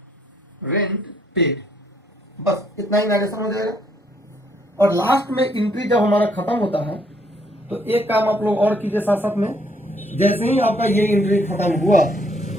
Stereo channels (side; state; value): both; normal; correlation 0.69